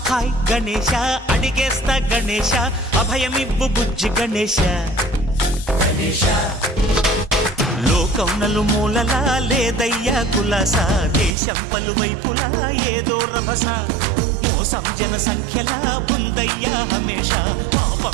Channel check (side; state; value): left; drops out; at 11.4 s